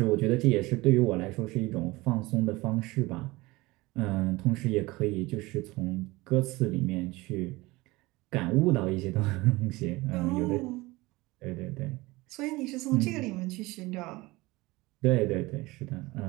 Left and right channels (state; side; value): quieter; left; 21.4 dB